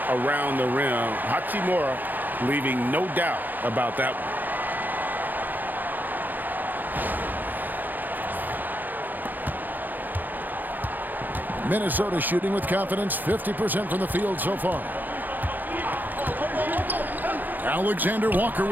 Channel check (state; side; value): late; left; 0.086 ms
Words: around the rim. Hachimura leaving no doubt about that one. Minnesota shooting with confidence, 50% from the field so far. Alexander Walker